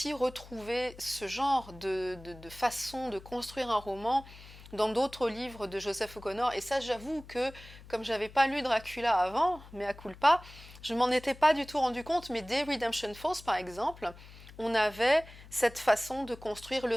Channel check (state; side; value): noise; left; hum, 19 dB below the sound